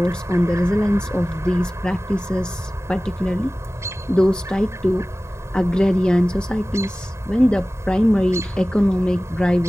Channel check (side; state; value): both; normal; correlation 0.97